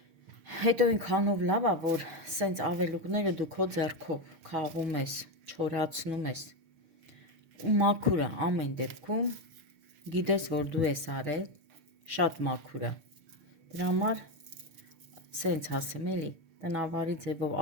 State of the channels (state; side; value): late; left; 6.7 ms